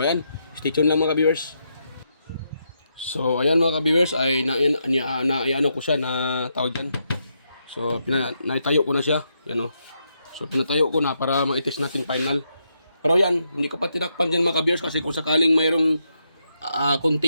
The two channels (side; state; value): both; inverted; correlation -0.81